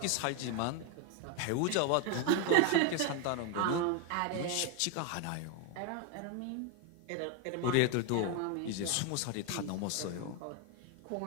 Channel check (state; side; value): different; both; correlation 0.01